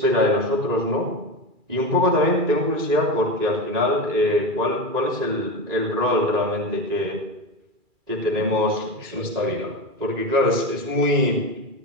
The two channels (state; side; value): late; left; 2.4 ms